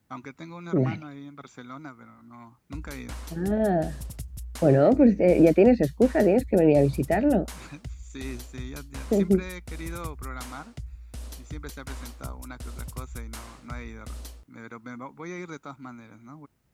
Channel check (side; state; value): both; identical; correlation 1.00